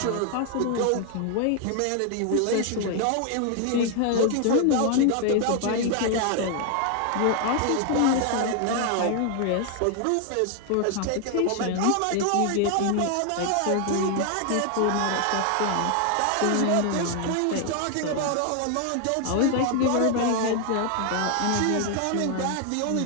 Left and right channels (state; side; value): different; both; correlation 0.00